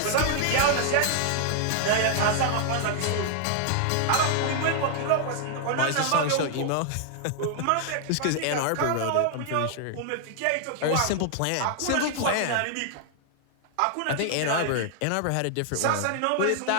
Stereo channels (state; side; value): different; both; correlation 0.00